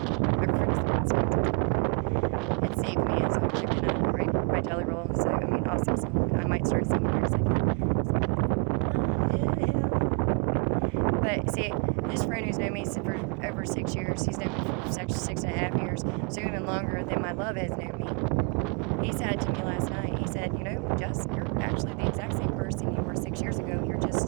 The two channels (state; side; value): quieter; left; 37.1 dB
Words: My friend's the it saved me as I'm taking a break my jelly roll, so I mean, also, so I might start singing here in a second. But see, this friend who's known me for over 6 years, he's known me for 6.5 years, so even longer than my love has known me. He said to me last night, he said, you know, Jess, you're actually the exact same person you were 6 years ago, you're